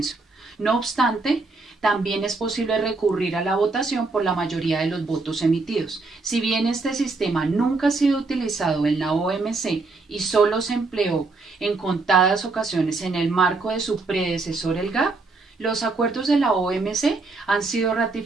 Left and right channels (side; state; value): left; quieter; 3.7 dB